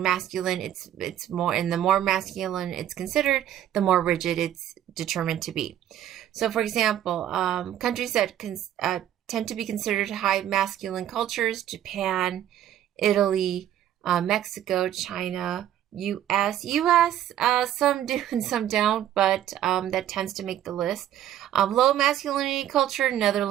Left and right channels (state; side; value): quieter; left; 11.5 dB